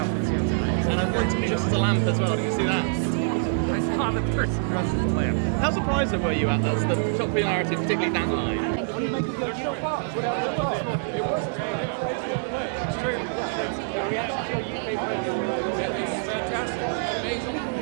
How surprised were you at this? The popularity, particularly down the line? What do you make of the original cast? What happened? It was it's true. The reaction to your UK friends. It's fantastic. It's amazing.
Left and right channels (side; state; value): left; silent; digital silence